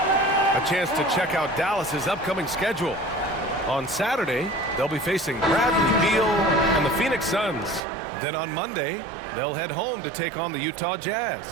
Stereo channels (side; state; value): left; drops out; at 7.8 s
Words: A chance to check out Dallas's upcoming schedule. On Saturday, they'll be facing Bradley Beal and the Phoenix Suns. Then on Monday, they'll head home to take on the Utah